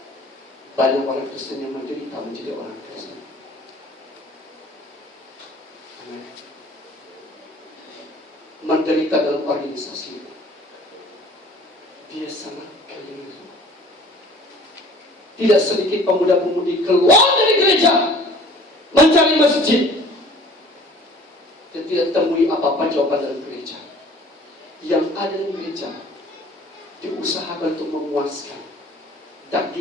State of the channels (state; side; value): normal; both; correlation 0.49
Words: Banyak orang Kristen yang menderita menjadi orang Kristen. Amin. Menderita dalam organisasi, dia sangat keliru. Tidak sedikit pemuda-pemudi keluar dari gereja mencari masjid dan tidak temui apa-apa jawaban dalam gereja. Yang ada di gereja diusahakan untuk memuaskan